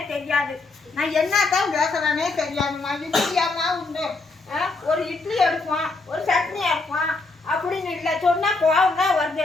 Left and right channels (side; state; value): right; quieter; 3.6 dB